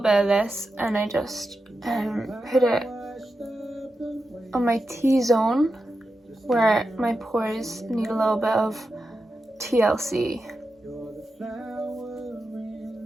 of this and I just put it on my T-zone where my pores need a little bit of TLC.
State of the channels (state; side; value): normal; both; correlation 0.89